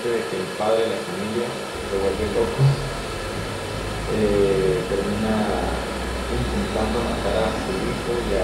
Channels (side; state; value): both; identical; correlation 1.00